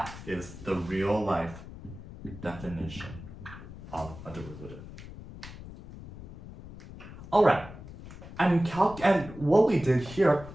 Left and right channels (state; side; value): noise; left; rumble, 14 dB below the sound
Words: is the real life definition of a derivative. Alright, and what we did here